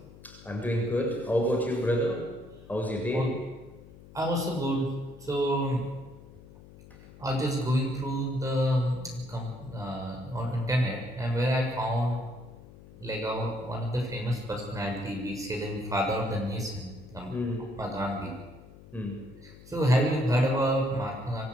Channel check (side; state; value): left; noise; hum, 20 dB below the sound